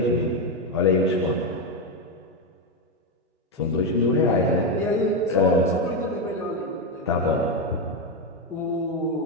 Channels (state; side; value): normal; both; correlation 0.08